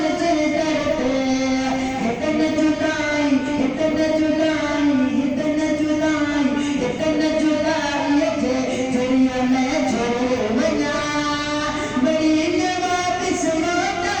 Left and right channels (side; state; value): both; identical; correlation 1.00